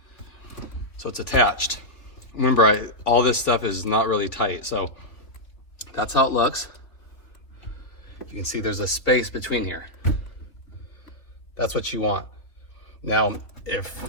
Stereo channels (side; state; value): right; late; 3.1 ms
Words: So it's attached. Remember, all this stuff is not really tight. So that's how it looks. You can see there's a space between here. That's what you want. Now, if